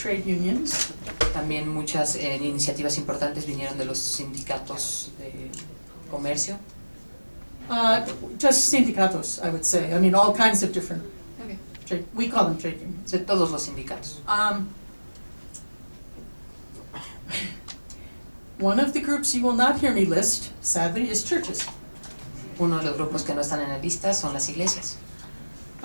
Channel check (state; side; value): inverted; both; correlation -1.00